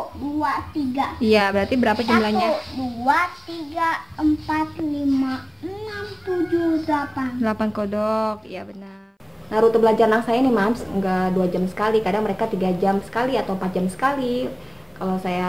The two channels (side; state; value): both; identical; correlation 1.00